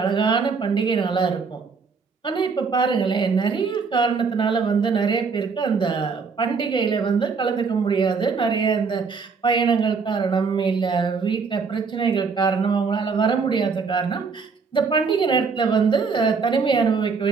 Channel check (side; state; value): left; quieter; 5.1 dB